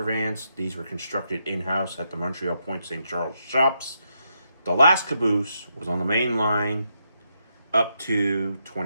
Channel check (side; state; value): both; inverted; correlation -0.81